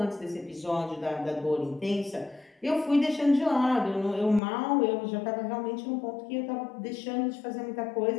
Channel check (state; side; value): drops out; right; at 4.4 s